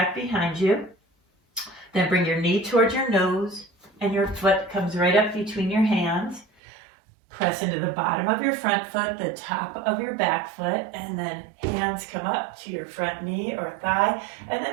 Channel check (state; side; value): drops out; left; at 6.5 s